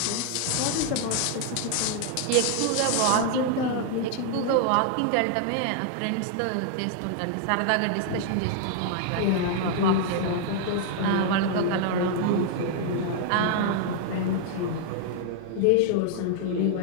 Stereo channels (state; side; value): different; both; correlation 0.00